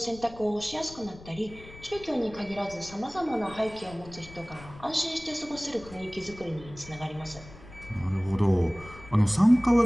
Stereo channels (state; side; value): noise; left; rumble, 18 dB below the sound